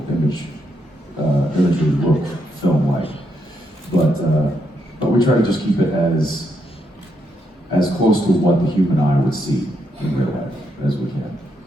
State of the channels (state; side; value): normal; both; correlation 0.79